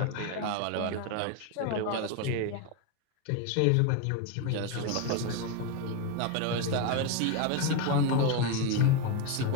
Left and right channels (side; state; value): both; different; correlation 0.02